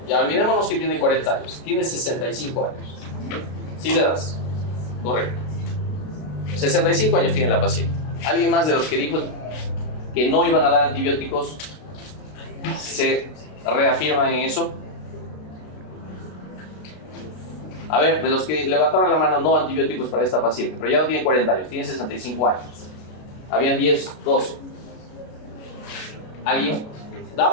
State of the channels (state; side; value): late; right; 33 ms